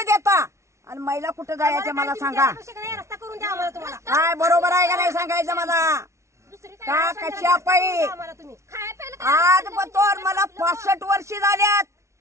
आणि महिला कुठं जायचं मला सांगा. काय बरोबर आहे का नाही सांगायचं मला का कशा पाहिजे. आज बतोर मला 65 वर्षे झाल्यात,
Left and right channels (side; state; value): left; late; 0.13 ms